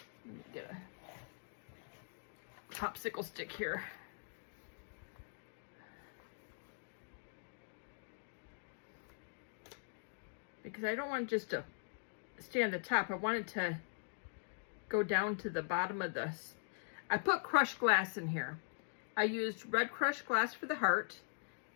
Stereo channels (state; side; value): silent; right; digital silence